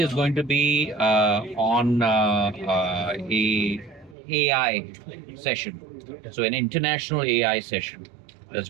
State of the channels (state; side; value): drops out; left; at 4.2 s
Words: going to be on a AI session. So an international AI session that's